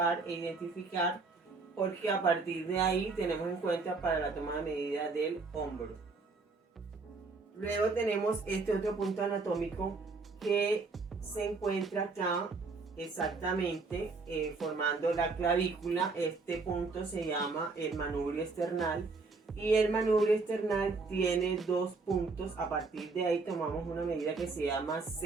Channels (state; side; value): quieter; left; 4.1 dB